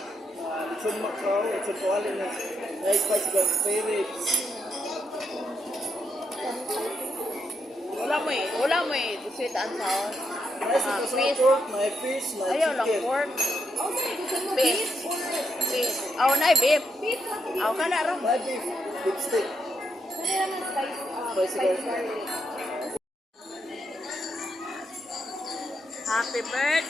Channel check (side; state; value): both; normal; correlation 0.81